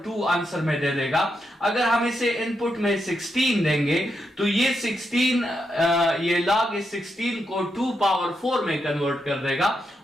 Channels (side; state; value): both; normal; correlation 0.83